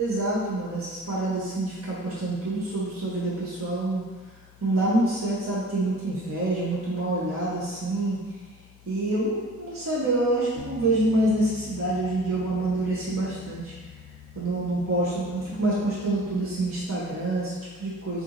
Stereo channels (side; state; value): left; noise; hum, 24 dB below the sound